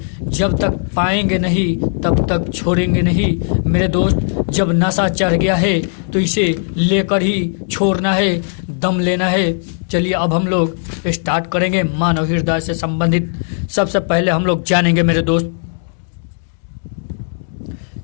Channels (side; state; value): right; silent; digital silence